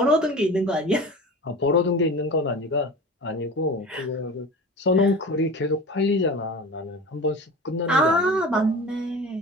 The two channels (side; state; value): both; normal; correlation 0.34